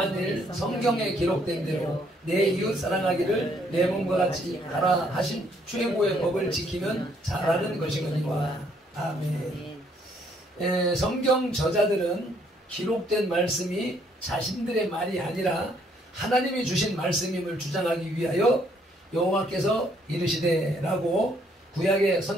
성경에 기록된 대로 내 이웃 사랑하기를 내 몸과 같이 하라 하신 최고의 법을 지키면 잘하는 것이거니와. 아멘. 성경 저자들은 기록된 말씀이 자신들의 말이 아니라 하나님이 주신 말씀임을 주장하기 위하여 여호와께서 이르시되 라고 구약의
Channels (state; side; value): normal; both; correlation 0.68